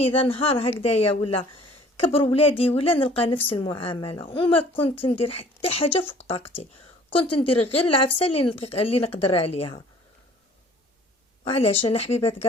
نهار هكذايا ولا كبر ولادي ولا نلقى نفس المعامله، وما كنت ندير حتى حاجه فوق طاقتي، كنت ندير غير العفسه اللي نقدر عليها. وعلاش انا حبيبات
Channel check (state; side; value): normal; both; correlation 0.53